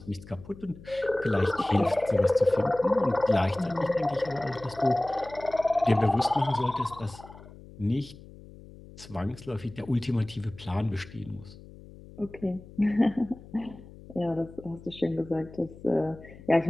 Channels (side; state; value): left; noise; hum, 19 dB below the sound